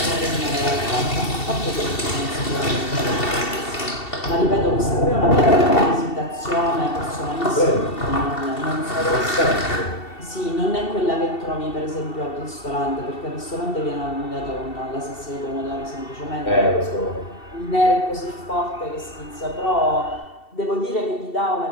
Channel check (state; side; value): late; right; 2.7 ms